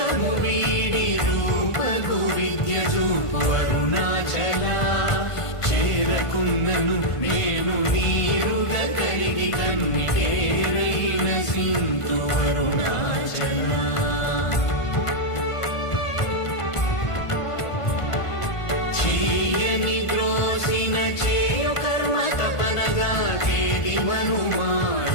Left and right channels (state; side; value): late; right; 1.5 ms